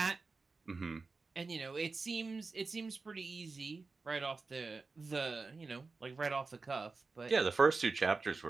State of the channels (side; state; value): left; quieter; 4.1 dB